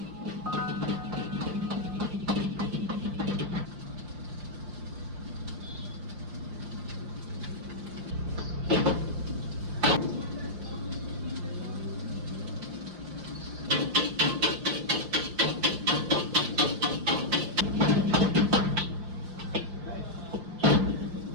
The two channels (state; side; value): late; left; 5.6 ms